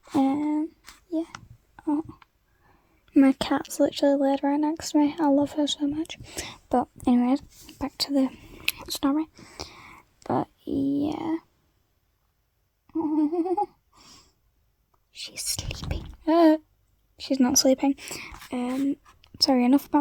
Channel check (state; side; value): identical; both; correlation 1.00